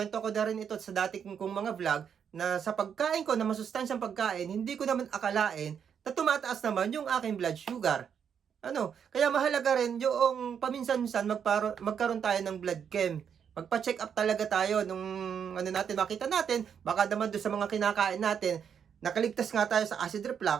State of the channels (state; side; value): quieter; left; 7.7 dB